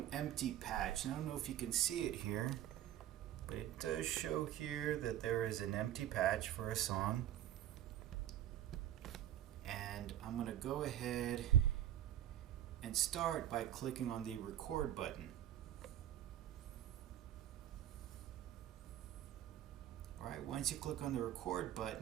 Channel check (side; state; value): left; quieter; 12.0 dB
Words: empty patch. And I don't know if you can see it here, but it does show here that there is an empty patch for a song. And I'm going to go ahead and start by clicking on the record button. Alright, once you click on the record